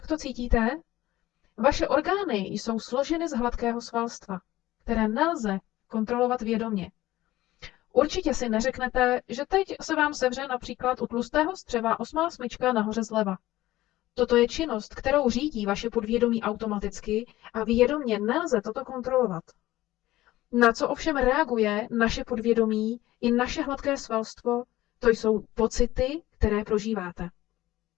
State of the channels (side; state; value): right; quieter; 16.2 dB